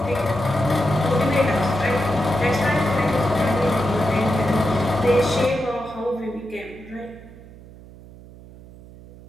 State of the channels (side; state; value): right; noise; hum, 19 dB below the sound